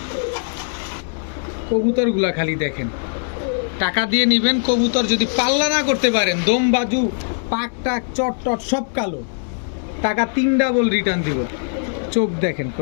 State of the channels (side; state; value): right; silent; digital silence